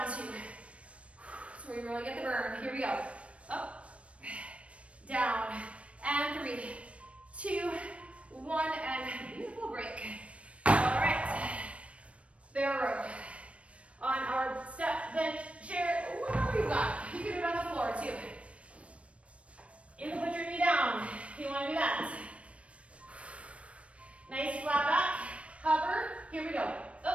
2. So we really get the burn. Here we go. Up, down, and 3, 2, 1, and beautiful break. All right, bear row. On our step, bench, chair, whatever you got. You can do it on the floor too.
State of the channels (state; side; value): late; left; 0.062 ms